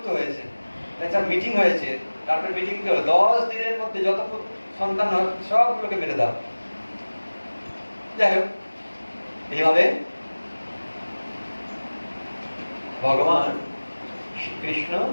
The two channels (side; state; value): both; inverted; correlation -1.00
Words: হয়েছে। একটা মিটিং হয়েছে, তারপর মিটিং হলো 10 দিনের মধ্যে যত সন্তান হয় সবগুলোকে মেরে দাও। যাই হোক, এইভাবে ভগবান শ্রীকৃষ্ণ